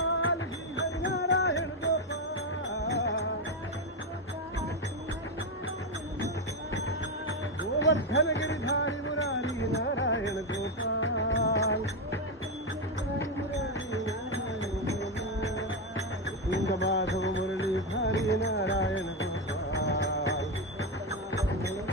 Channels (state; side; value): normal; both; correlation 0.08